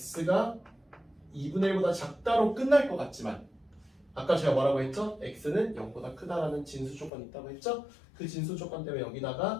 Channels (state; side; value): drops out; right; at 7.1 s